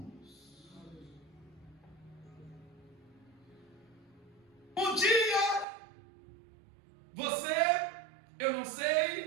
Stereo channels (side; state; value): left; drops out; at 5.7 s